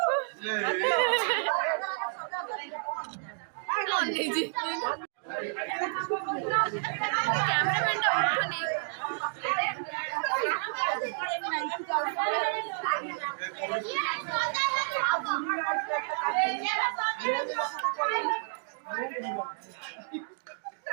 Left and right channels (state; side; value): silent; left; digital silence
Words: অনেজি ক্যামেরাম্যানটা উঠোনি